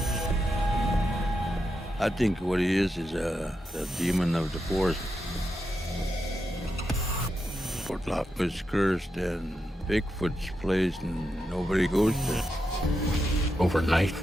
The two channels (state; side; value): normal; both; correlation 0.86